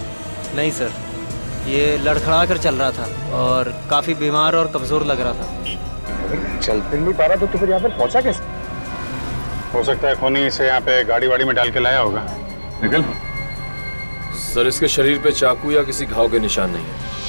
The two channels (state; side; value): inverted; both; correlation -1.00